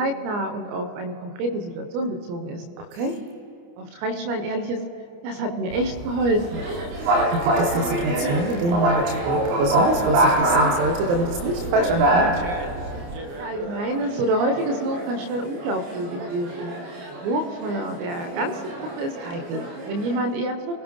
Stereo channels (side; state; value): left; late; 29 ms